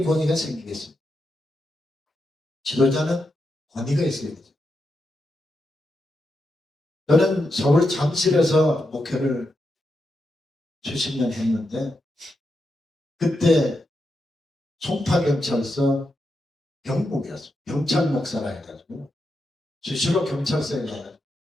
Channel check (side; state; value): both; normal; correlation 0.85